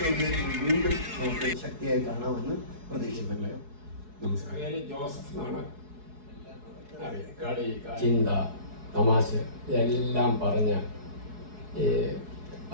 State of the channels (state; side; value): late; left; 4.7 ms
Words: വീണ്ടും നമുക്ക് ശക്തിയായി കാണാമെന്ന് പ്രതീക്ഷിക്കുന്നില്ല. നമസ്കാരം. ജോസഫ് എന്നാണ്. കളി, ചിന്ത, തമാശ എല്ലാം പറഞ്ഞ